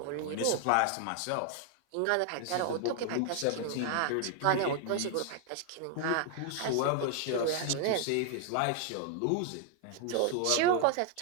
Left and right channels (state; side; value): different; both; correlation 0.00